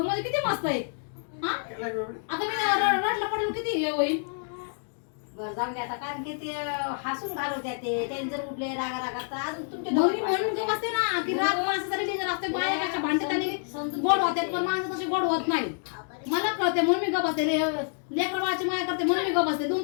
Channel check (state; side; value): silent; right; 59 dB below the other